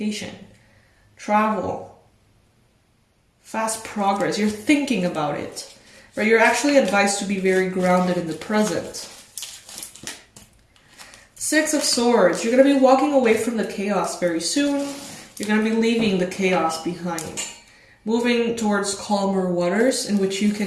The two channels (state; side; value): identical; both; correlation 1.00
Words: travel, fast progress. You're thinking about it, right? You're actually advised to be very grounded in the present. 6 of Swords, you're going to be walking away from the chaos very soon. You're going to be leaving the chaos behind, moving towards calmer waters in which you